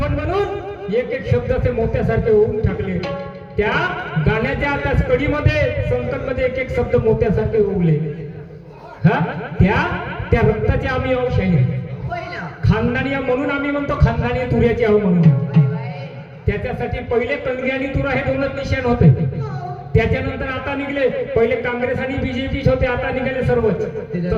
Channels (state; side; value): identical; both; correlation 1.00